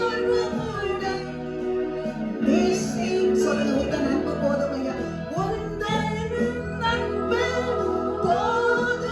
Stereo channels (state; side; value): identical; both; correlation 1.00